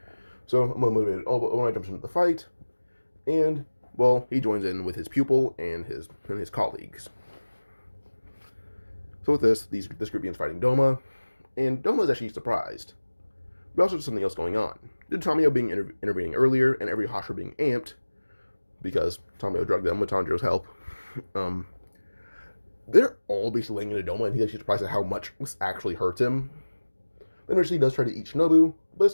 So Obanai jumps into the fight, and well, he joins in with his pupil and his colleagues. So with this group begins fighting Doma, and Doma is actually surprised. But also there's something else going on. Due to Tamio being intervening earlier, and every Hashira being amped, because Tamio drugged them with Tanjiro's help, they're all basically laying into Doma, and he's actually surprised at how much this actually hurts him. Then eventually he does try to eat Shinobu, but this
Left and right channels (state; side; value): inverted; both; correlation -1.00